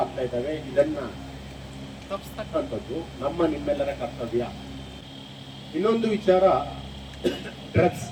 ಆಗ್ತಾ ಇದ್ದಾವೆ. ಇದನ್ನ ತಪ್ಪಿಸ್ತಕ್ಕಂಥದ್ದು ನಮ್ಮ ನಿಮ್ಮೆಲ್ಲರ ಕರ್ತವ್ಯ. ಇನ್ನೊಂದು ವಿಚಾರ, ಡ್ರಗ್ಸ್.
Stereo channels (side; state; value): both; identical; correlation 1.00